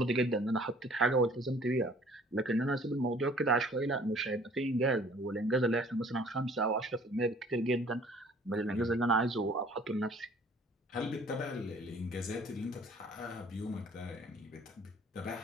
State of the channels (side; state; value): both; normal; correlation 0.54